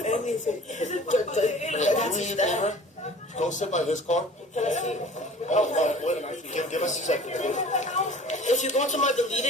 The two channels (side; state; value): both; normal; correlation 0.45